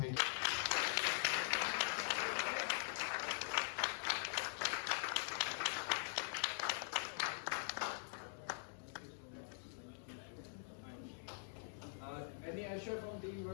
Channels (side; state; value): right; silent; digital silence